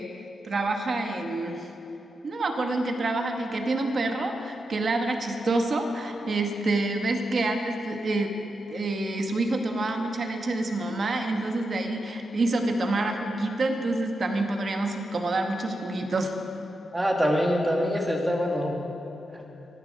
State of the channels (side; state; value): both; normal; correlation 0.87